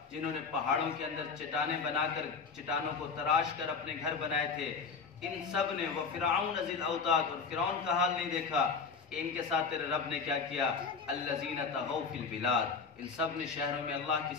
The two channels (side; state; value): right; quieter; 5.3 dB